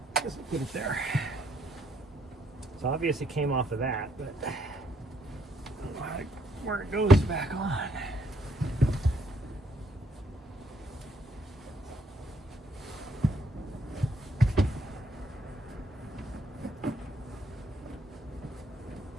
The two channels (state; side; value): normal; both; correlation 0.70